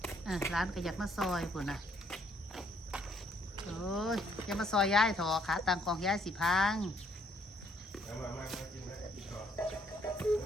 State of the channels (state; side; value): normal; both; correlation 0.67